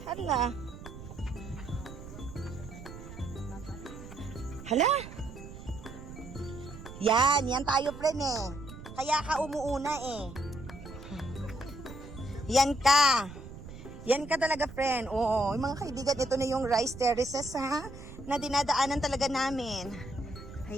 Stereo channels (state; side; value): noise; right; rumble, 13 dB below the sound